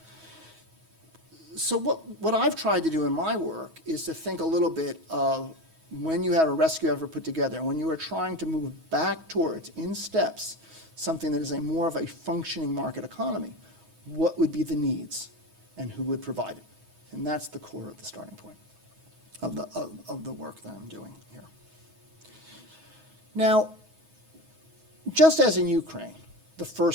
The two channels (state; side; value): late; left; 6.2 ms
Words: So what I've tried to do in my work is to think a little bit of when you have a rescue effort put together, when you are trying to move back towards, in steps, something that is more of a functioning market economy, what would be the needs and who would provide it? And that's the core of the starting point of the work that I'm doing here. Now, just as in Ukraine, the